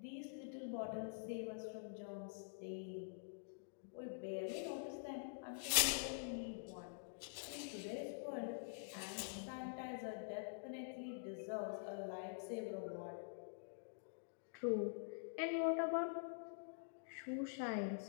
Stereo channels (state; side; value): silent; right; digital silence